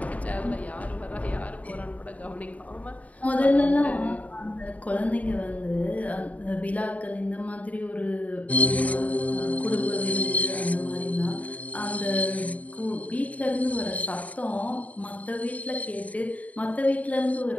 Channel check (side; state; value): right; late; 0.070 ms